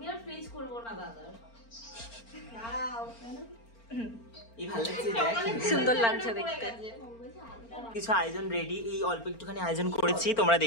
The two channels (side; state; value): right; late; 4.4 ms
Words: আর ফ্রিজ করবো না দাদা। এই ভালো লাগছে দেখ, সুন্দর লাগছে দেখতে। কিছু আয়োজন রেডি, এই অল্প একটুখানি আয়োজন করেছি, তোমরা